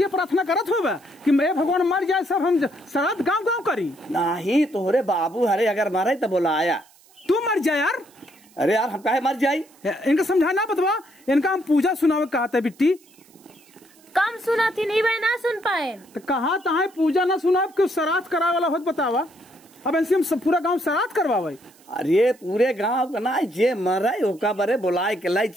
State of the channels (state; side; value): noise; right; hiss, 28 dB below the sound